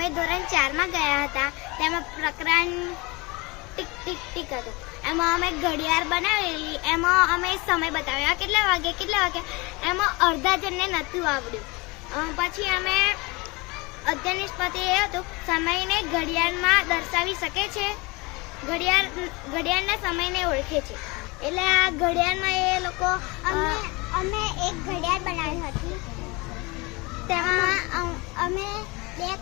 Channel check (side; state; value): right; quieter; 25.8 dB